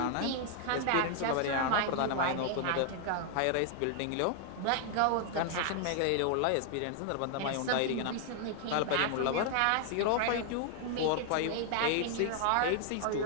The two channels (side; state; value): both; different; correlation 0.00